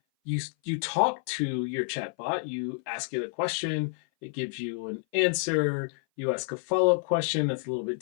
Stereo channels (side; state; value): right; silent; 57 dB below the other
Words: you talk to your chatbot, you ask it a question, it gives you an answer, you ask a follow-up question that's a little bit